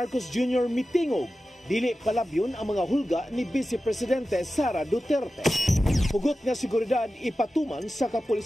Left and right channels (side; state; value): both; normal; correlation 0.94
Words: Jr. mitingog, dili palabyon ang mga hulga ni Vice Presidente Sara Duterte. Hugot nga seguridad ipatuman sa